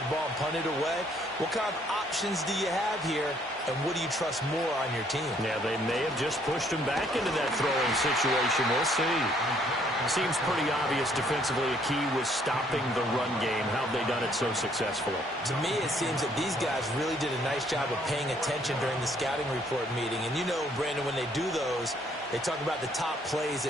the ball and punt it away? What kind of options do you have here, and what do you trust more on your team? Yeah, they may have just pushed him back into that throwing situation. We'll see. Seems pretty obvious defensively a key was stopping the run game. How have they done it so successfully? To me, it seems that these guys really did a nice job of paying attention during the scouting report meeting. And you know, Brandon, when they do those, they talk about the top plays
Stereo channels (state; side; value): normal; both; correlation 0.65